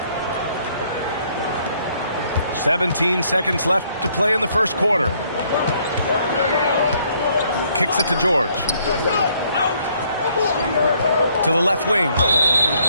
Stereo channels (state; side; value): inverted; both; correlation -0.67